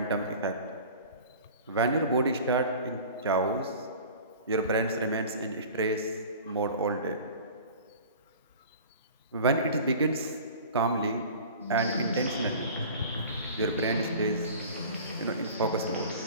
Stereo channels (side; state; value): both; inverted; correlation -0.41